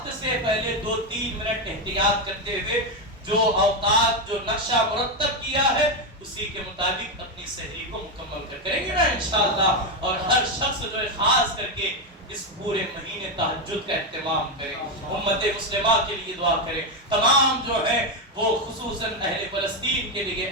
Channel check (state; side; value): normal; both; correlation 0.07